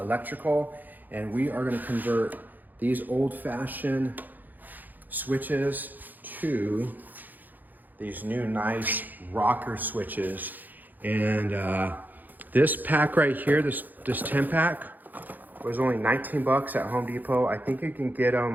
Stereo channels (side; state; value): left; late; 0.085 ms